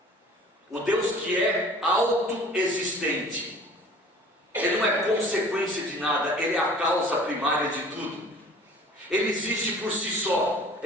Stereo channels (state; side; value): normal; both; correlation 0.47